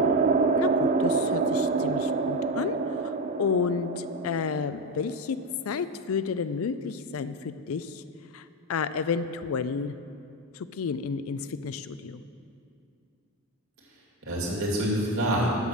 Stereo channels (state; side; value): normal; both; correlation 0.12